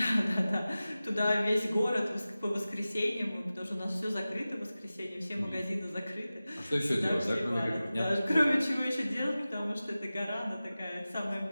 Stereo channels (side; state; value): both; inverted; correlation -0.96